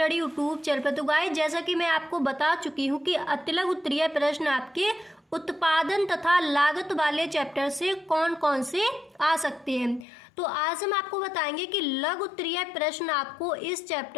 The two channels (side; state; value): right; drops out; at 10.1 s